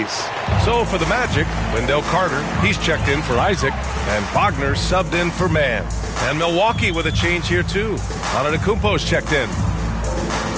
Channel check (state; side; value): identical; both; correlation 1.00